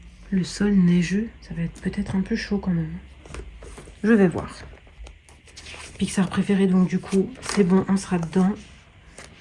le sol neigeux, ça va être peut-être un peu chaud quand même. Je vais voir. Pixar préféré, donc du coup, c'est bon, on sera dedans.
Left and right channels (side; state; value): both; identical; correlation 1.00